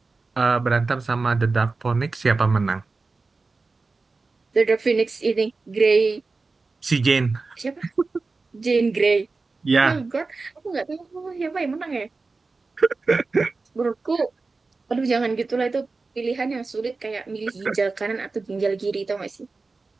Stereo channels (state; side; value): quieter; left; 3.9 dB